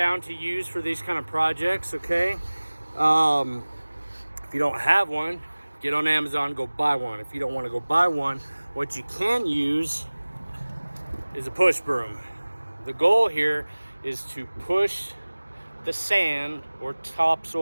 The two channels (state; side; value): inverted; both; correlation -1.00